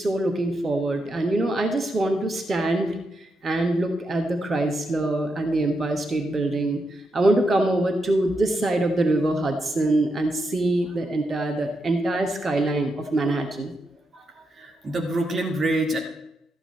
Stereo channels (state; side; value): normal; both; correlation 0.84